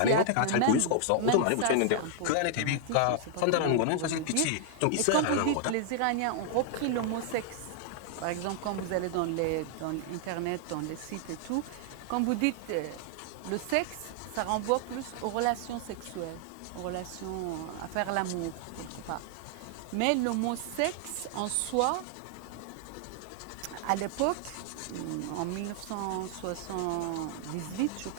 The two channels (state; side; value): different; both; correlation 0.00